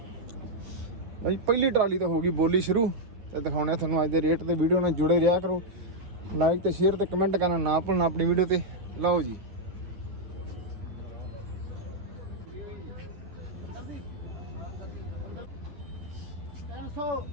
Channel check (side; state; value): left; late; 10 ms